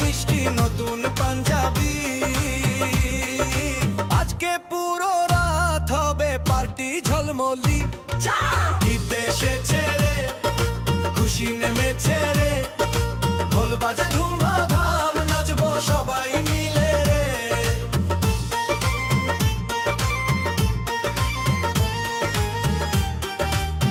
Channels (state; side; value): identical; both; correlation 1.00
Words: নতুন পাঞ্জাবি, আজকে পুরো রাত হবে পার্টি ঝলমলি। ঈদ এসেছে রে, খুশি নেমেছে রে, ঢোল বাজে ধুমধাম নাচবো সবাই মিলে রে।